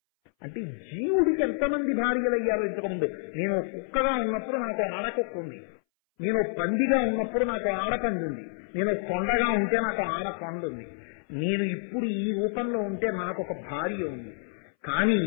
అంటే జీవుడికి ఎంతమంది భార్యలయ్యారో ఇంతకుముందు. నేను కుక్కగా ఉన్నప్పుడు నాకు ఆడకుక్క ఉంది, నేను పందిగా ఉన్నప్పుడు నాకు ఆడపంది ఉంది, నేను కొండగా ఉంటే నాకు ఆడకొండ ఉంది, నేను ఇప్పుడు ఈ రూపంలో ఉంటే నాకు ఒక భార్య ఉంది. కానీ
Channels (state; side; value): silent; right; 59 dB below the other